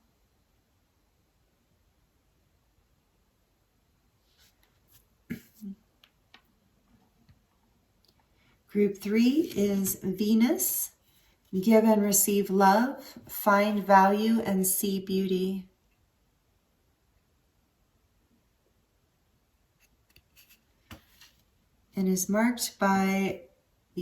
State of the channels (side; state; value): both; identical; correlation 1.00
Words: Group three is Venus, give and receive love, find value, and see beauty. And is marked by